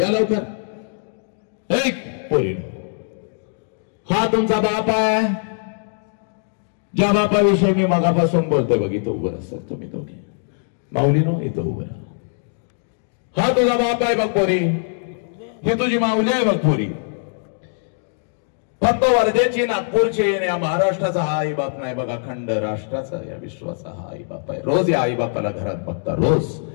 या लवकर. हा तुमचा बाप आहे ज्या बापाविषयी मी मगापासून बोलतोय बघ. इथं उभं राहा सर तुम्ही दोघे माऊलीनो इथं उभं राहा. हा तुझा बाप आहे बघ पोरी. ही तुझी माऊली आहे बघ पोरी. फक्त वर्धेची नागपूरची या महाराष्ट्राचा हा आई बाप नाही बघा. अखंड राष्ट्राचा या विश्वाचा हा आई बाप आहे. रोज या आई बापाला घरात बघता रोज.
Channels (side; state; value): right; silent; digital silence